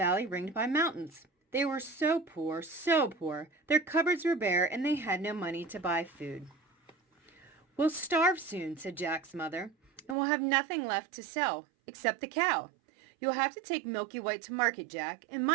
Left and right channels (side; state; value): left; drops out; at 10.2 s